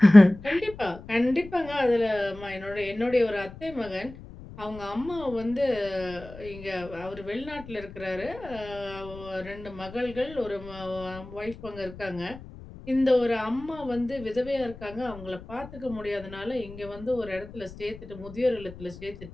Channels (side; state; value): left; noise; rumble, 16 dB below the sound